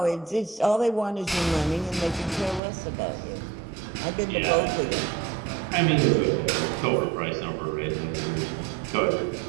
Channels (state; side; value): drops out; left; at 2.6 s